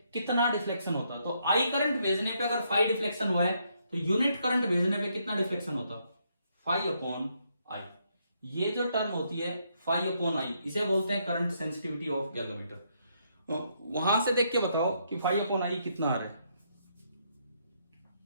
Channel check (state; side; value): inverted; both; correlation -0.75